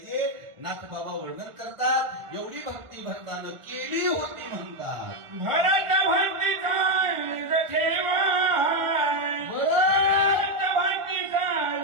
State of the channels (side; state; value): left; late; 1.4 ms